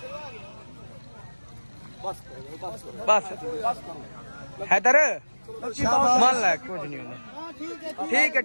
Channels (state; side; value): inverted; both; correlation -1.00